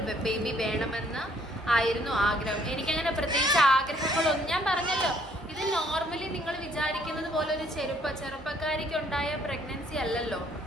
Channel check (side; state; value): both; normal; correlation 0.64